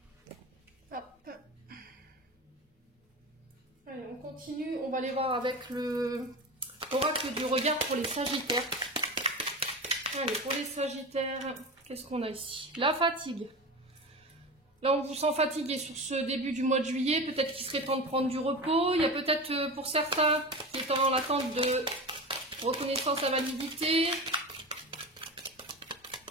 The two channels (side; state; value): both; normal; correlation 0.27